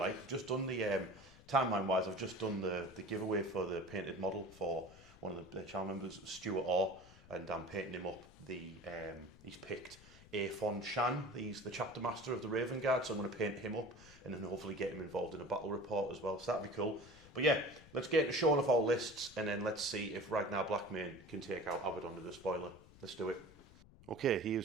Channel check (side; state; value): left; noise; rumble, 22 dB below the sound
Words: I've just done the timeline wise. I've just done the giveaway for the painted model for one of the channel members, Stuart Orr, and I'm painting him up. He's picked Aphon Shan. He's the chapter master of the Raven Guard, so I'm going to paint him up and then hopefully get him involved in a battle report as well. So that'd be cool. But yeah, let's get into showing off our lists and then let's see if Ragnar Blackmane can take out Abaddon the Despoiler. Let's do it. Okay,